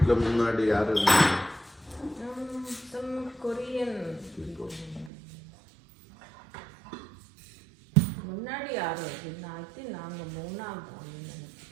முன்னாடி யாரு? some Korean. முன்னாடி யாரும் அப்படின்னா நாங்கள் 3ஆவது ஆளுன்னு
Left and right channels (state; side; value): drops out; left; at 5.1 s